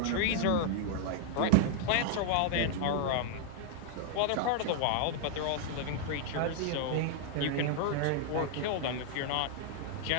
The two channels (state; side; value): different; both; correlation 0.00